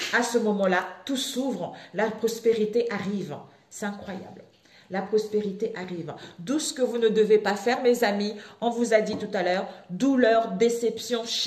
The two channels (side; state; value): both; identical; correlation 1.00